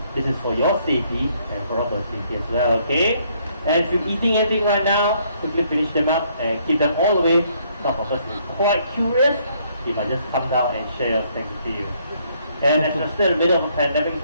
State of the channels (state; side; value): inverted; both; correlation -0.68